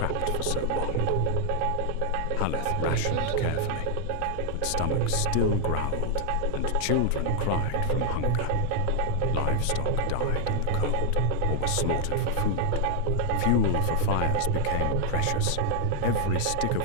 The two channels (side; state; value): both; different; correlation 0.00